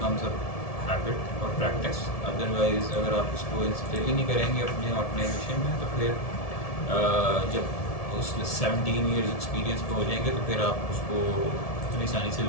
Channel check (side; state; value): right; late; 1.7 ms